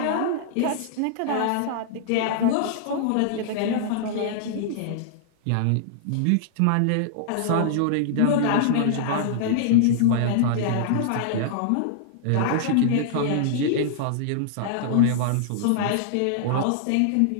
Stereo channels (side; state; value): both; different; correlation -0.01